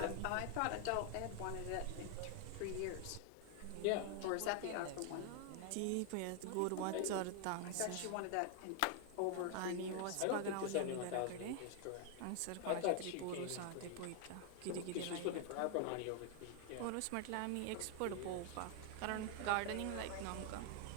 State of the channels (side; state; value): both; different; correlation 0.00